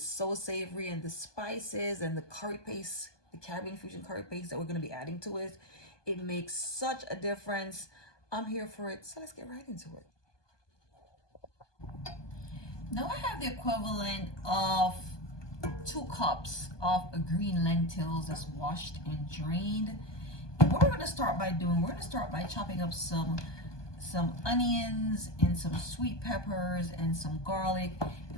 so savory, and the spices and the curry paste, the Caribbean fusion curry paste that we're going to be adding to it, it makes such a difference. I'm here for it, so let's get right into it. Now I have the equivalent of 2 cups of green lentils that's washed and drained. And what we're going to start by doing, we're going to start by chopping up some onions and some sweet peppers and some garlic,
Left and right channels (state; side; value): late; right; 1.2 ms